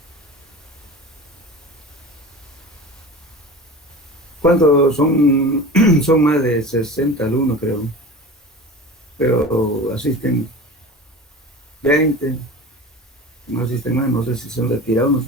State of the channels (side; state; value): both; normal; correlation 0.34